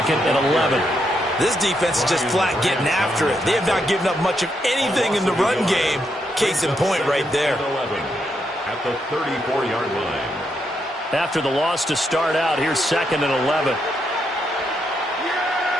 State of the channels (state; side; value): normal; both; correlation 0.79